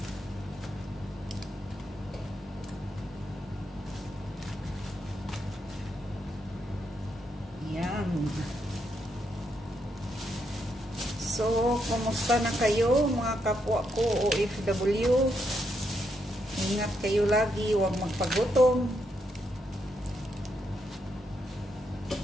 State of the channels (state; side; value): normal; both; correlation 0.79